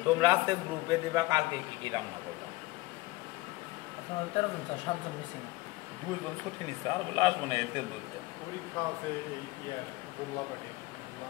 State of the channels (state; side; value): quieter; right; 20.6 dB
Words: তোমরা আজকে গ্রুপে দিবা কালকে কি কি রান্না করবা। 2 জন ছুটি নিচ্ছে, আর বলে আসবো না, এতে বলতে